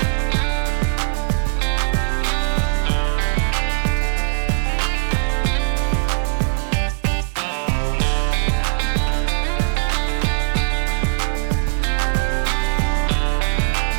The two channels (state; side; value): silent; left; 66 dB below the other